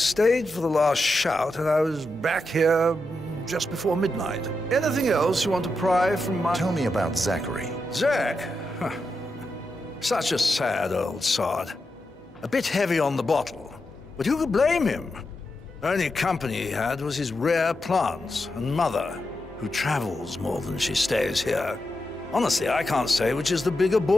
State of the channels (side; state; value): both; normal; correlation 0.87